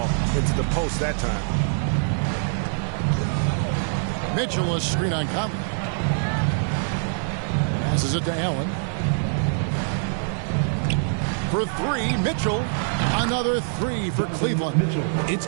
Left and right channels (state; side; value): silent; left; 62 dB below the other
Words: into the post that time. Mitchell, a screen on Conley. Passes it to Allen. For three, Mitchell. Another three for Cleveland. It's